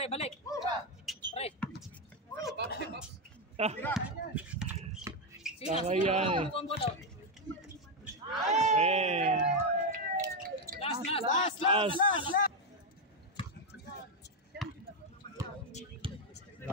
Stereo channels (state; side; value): normal; both; correlation 0.05